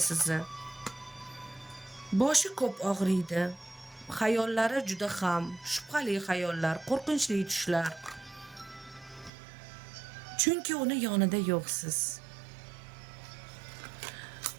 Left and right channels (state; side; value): drops out; left; at 9.3 s